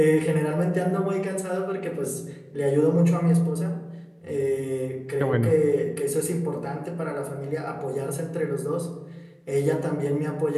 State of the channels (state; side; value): identical; both; correlation 1.00